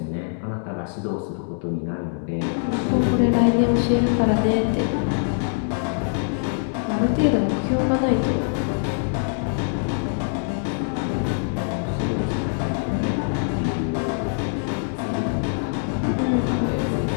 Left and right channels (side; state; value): right; silent; 63 dB below the other